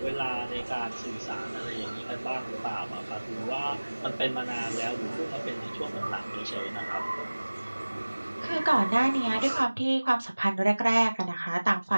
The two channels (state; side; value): inverted; both; correlation -1.00